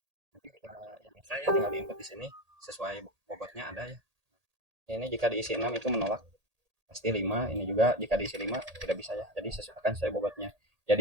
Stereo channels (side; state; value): left; late; 1.8 ms